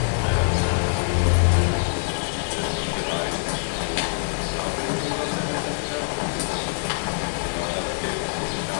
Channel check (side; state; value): right; silent; 62 dB below the other